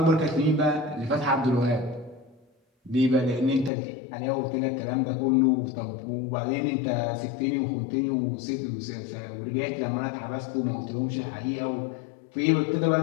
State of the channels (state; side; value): drops out; right; at 3.7 s